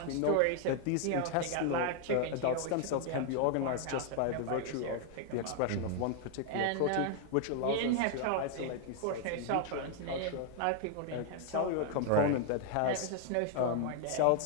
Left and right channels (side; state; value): both; different; correlation 0.00